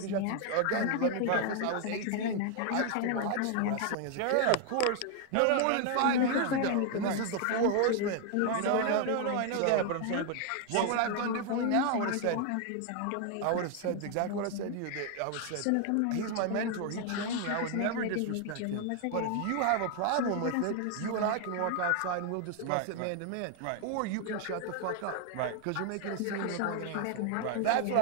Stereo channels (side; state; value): both; different; correlation 0.00